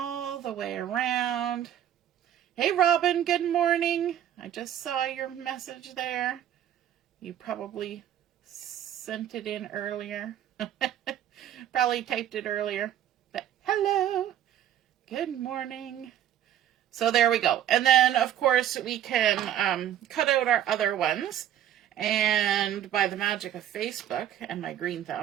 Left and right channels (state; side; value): quieter; left; 10.9 dB